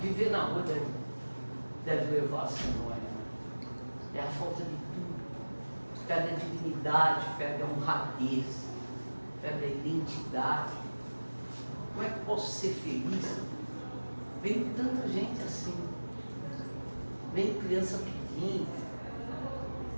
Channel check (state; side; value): inverted; both; correlation -1.00